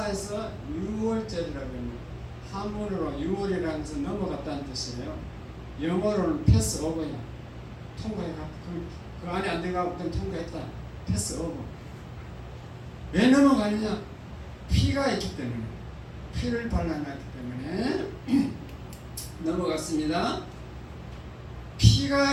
해서 6월절이라고 합니다. 한문으로 6월이라는 것은 넘어갔다는 뜻이에요. 영어로는 패스 오버야. 통과해가. 그 안에 안 들어가고 그냥 통과했다. 패스 오버. 왜 넘어가느냐? 피가 있기 때문에. 피를 발라놨기 때문에 넘어갔습니다.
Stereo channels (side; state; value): both; identical; correlation 1.00